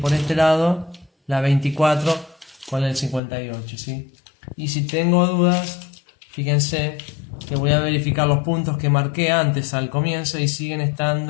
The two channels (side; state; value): right; drops out; at 3.2 s